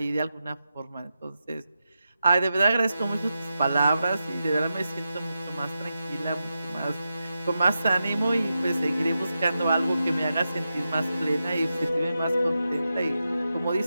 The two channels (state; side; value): inverted; both; correlation -0.89